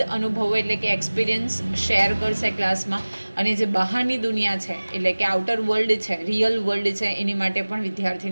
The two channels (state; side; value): inverted; both; correlation -1.00